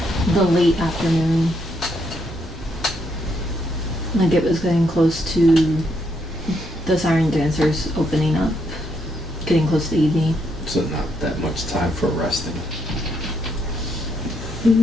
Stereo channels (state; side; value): normal; both; correlation 0.76